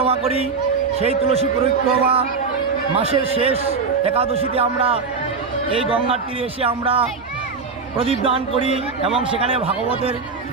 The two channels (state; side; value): quieter; left; 4.8 dB